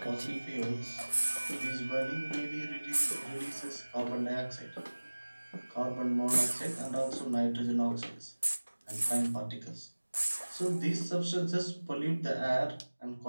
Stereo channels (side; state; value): both; inverted; correlation -1.00